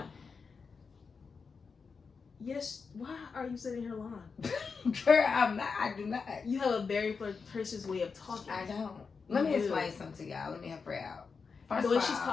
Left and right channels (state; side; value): quieter; right; 5.2 dB